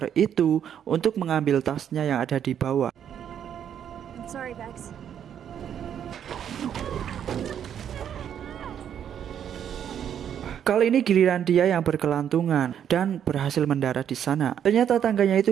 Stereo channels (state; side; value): quieter; left; 9.1 dB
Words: itu untuk mengambil tasnya yang ada di bawah. I'm sorry, Bex. Kali ini giliran dia yang berkelantungan dan berhasil mendarat di sana. Ternyata tangganya